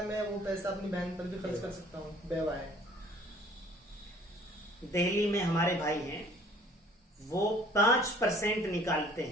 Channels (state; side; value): normal; both; correlation 0.54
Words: میں وہ پیسہ اپنی بہن پر بھی خرچ کر سکتا ہوں؟ بیوہ ہے. دہلی میں ہمارے بھائی ہیں, وہ 5% نکالتے